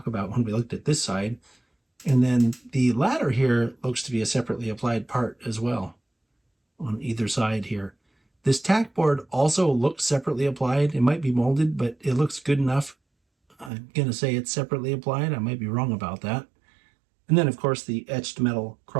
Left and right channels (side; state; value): left; drops out; at 13.7 s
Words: about when we looked at this side. And then the ladder here looks to be a separately applied part as well on either side here. This tack board also looks separately applied. It might be molded, but it looks good enough. I'm going to say it's separately applied. I might be wrong about that. And then, of course, the etched metal